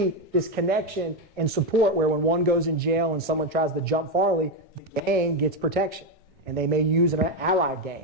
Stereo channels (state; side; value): normal; both; correlation 0.08